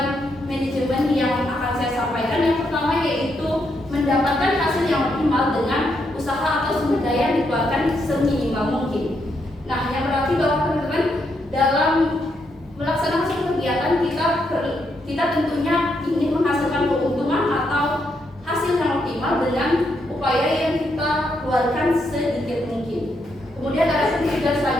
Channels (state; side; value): normal; both; correlation 0.79